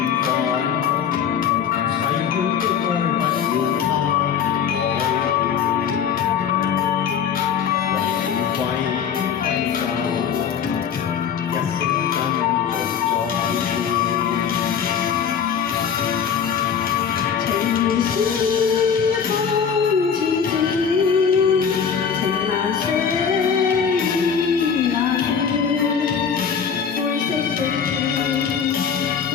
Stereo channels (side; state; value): right; quieter; 7.3 dB